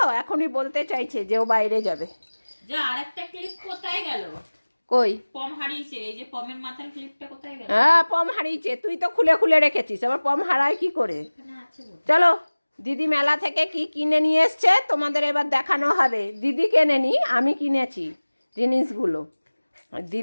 এখনই বলতে চাইছে যে ও বাইরে যাবে। যা আরেকটা ক্লিপ কোথায় গেল? কই? পম হারিয়েছে। এই যে পমের মাথার ক্লিপটা কোথায় গেল? হ্যাঁ পম হারিয়েছে, তুই তো খুলে খুলে রেখেছিস, আবার পম হারায় কি করে? চলো দিদি মেলা থেকে কি কিনে নিয়ে এসছে তোমাদের এবার দেখানো হবে। দিদি কেনেনি, আমি কিনেছি জিনিসগুলো।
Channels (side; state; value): both; inverted; correlation -1.00